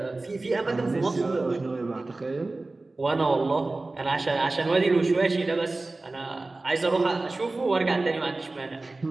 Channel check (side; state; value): left; quieter; 3.2 dB